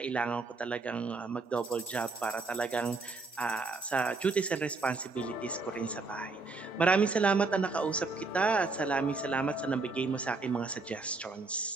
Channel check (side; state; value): left; quieter; 3.9 dB